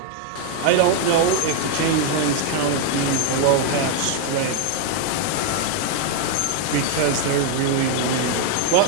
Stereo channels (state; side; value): different; both; correlation 0.01